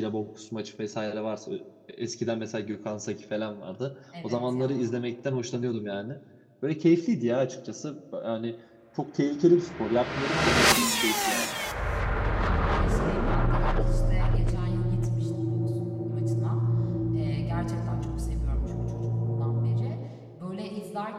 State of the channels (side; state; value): both; identical; correlation 1.00